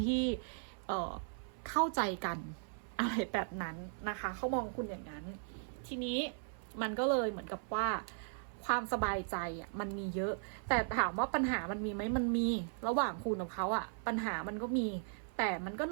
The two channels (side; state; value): left; silent; 53 dB below the other